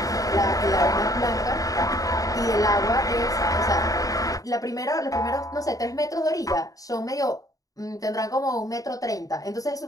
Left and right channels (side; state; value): right; late; 0.17 ms